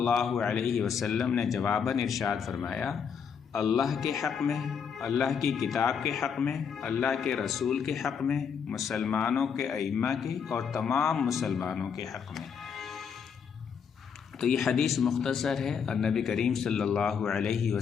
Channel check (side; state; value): right; quieter; 6.8 dB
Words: علیہ وسلم نے جواباً ارشاد فرمایا، اللہ کے حق میں، اللہ کی کتاب کے حق میں، اللہ کے رسول کے حق میں، مسلمانوں کے ائمہ کے اور تمام مسلمانوں کے حق میں۔ تو یہ حدیث مختصر ہے اور نبی کریم صلی اللہ علیہ